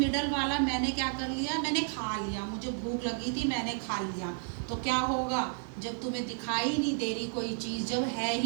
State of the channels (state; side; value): silent; left; 57 dB below the other